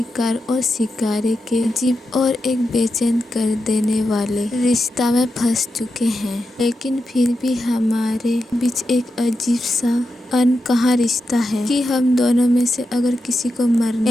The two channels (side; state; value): both; normal; correlation 0.88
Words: और शिकारी के अजीब और एक बेचैन कर देने वाले रिश्ता में फंस चुके हैं, लेकिन फिर भी हमारे बीच एक अजीब सा अनकहा रिश्ता है कि हम दोनों में से अगर किसी को मरना